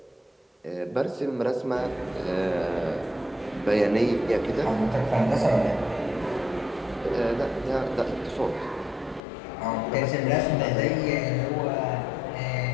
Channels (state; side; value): drops out; right; at 9.2 s